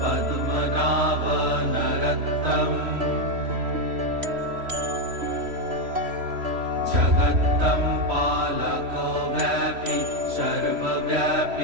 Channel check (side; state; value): left; late; 3.1 ms